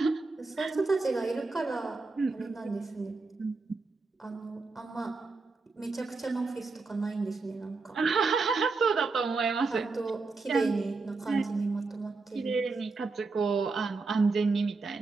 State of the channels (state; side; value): quieter; left; 4.0 dB